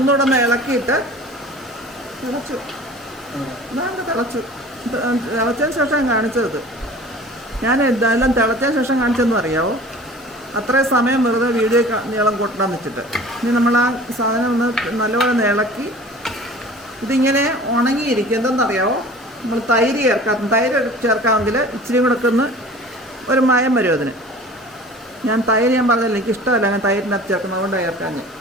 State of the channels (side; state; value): both; normal; correlation 0.43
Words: ഒന്ന് ഇളക്കിയിട്ട് തിളച്ചു. തിളച്ചതിന് ശേഷം കാണിച്ചത്. ഞാൻ എന്തായാലും തിളച്ചതിന് ശേഷം കാണിച്ചതെന്ന് അറിയാവോ? അത്രയും സമയം വെറുതെ വീഡിയോ നീളം കൂട്ടണം വെച്ചിട്ട്. ഇനി നമ്മൾ ആ സാധനം ഒന്ന് നല്ലപോലെ ഇളക്കി ഇതിങ്ങനെ ഉണങ്ങിയിരിക്കും. എന്തെന്നറിയാവോ? നമ്മൾ തൈര് ചേർക്കാമെങ്കിൽ ഇച്ചിരി കൂടെ ഒക്കെ ഒന്ന് ഒരു മയം വരും അതിന്. ഞാൻ പറഞ്ഞില്ല, എനിക്ക് ഇഷ്ടമല്ല ഞാൻ തൈരിനകത്ത് ചേർക്കുന്നത്, അതുകൊണ്ട് ചേർക്കാൻ.